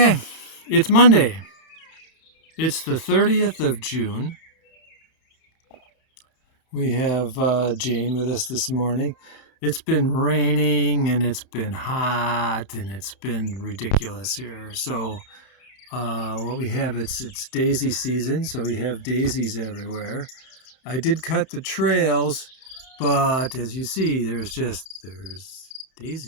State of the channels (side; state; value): right; late; 31 ms